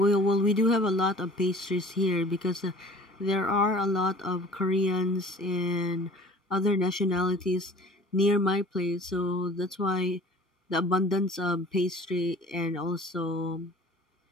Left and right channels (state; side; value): normal; both; correlation 0.46